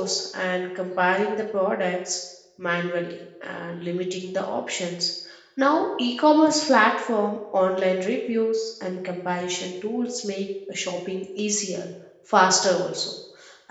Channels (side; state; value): both; identical; correlation 1.00